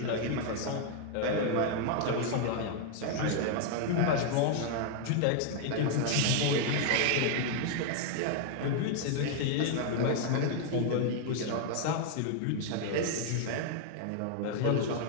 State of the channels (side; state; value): both; different; correlation 0.00